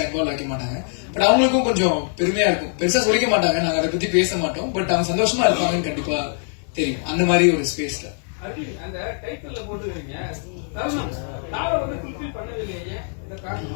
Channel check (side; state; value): right; silent; 56 dB below the other